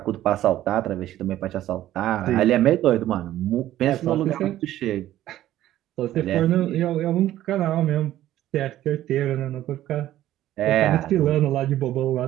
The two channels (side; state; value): left; quieter; 13.5 dB